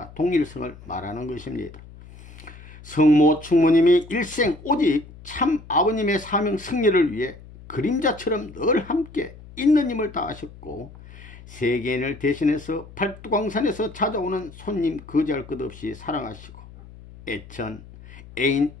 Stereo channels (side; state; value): left; noise; hum, 19 dB below the sound